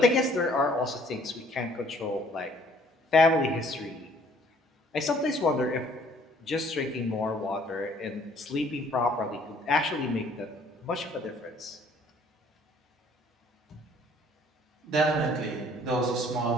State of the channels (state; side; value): normal; both; correlation 0.58